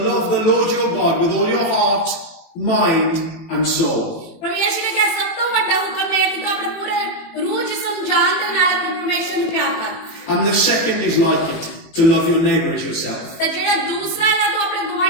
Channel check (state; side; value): late; right; 18 ms